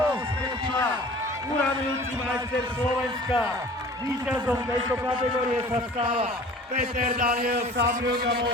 Uramujúci majster Slovenska. Víťazom tejto kategórie sa stáva Peter Daniel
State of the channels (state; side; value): normal; both; correlation 0.45